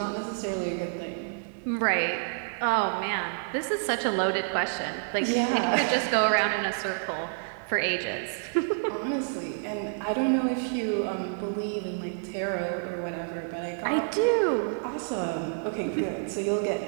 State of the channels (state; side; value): silent; left; 59 dB below the other